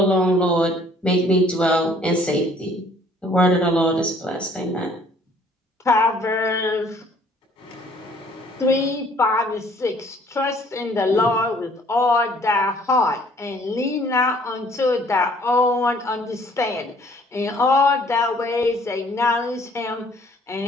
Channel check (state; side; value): normal; both; correlation 0.58